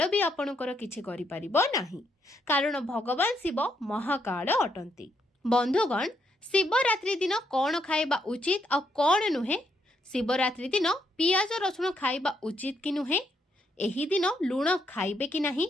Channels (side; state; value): both; normal; correlation 0.76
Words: भी आपणकर किछि करि परिबो नाही, कारण भगवान शिव महाकाल अटंती। बंधुगण शिवरात्रि दिन कौन खाइबा उचित आ कौन नुहे? शिवरात्रि दिन पियाज रसुण खाइबा उचित कि नुहे? एही दिन लुण खाइबे कि